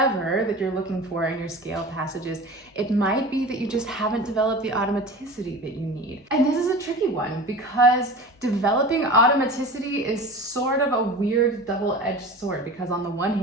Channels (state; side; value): normal; both; correlation 0.35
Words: that you're looking for in your scale passages, it might be that you just haven't developed the automaticity that you need. And this is a tricky one because developing automaticity is sort of a weird double-edged sword, because on the one